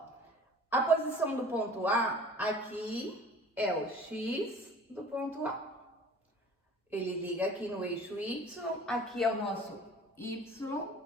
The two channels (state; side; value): normal; both; correlation 0.46